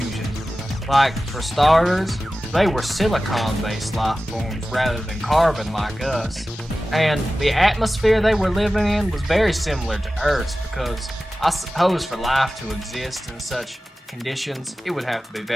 Like, for starters, they were silicon-based life forms rather than carbon like us. And the atmosphere they were living in was very similar to Earth's because I suppose for life to exist in such conditions, it would have to be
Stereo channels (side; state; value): both; normal; correlation 0.95